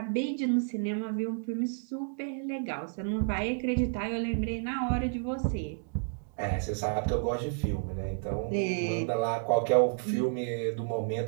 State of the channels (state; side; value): silent; left; digital silence